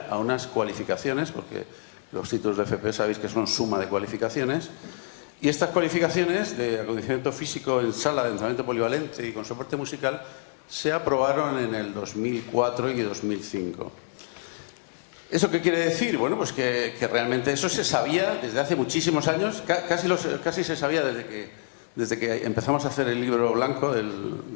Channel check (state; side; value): silent; right; digital silence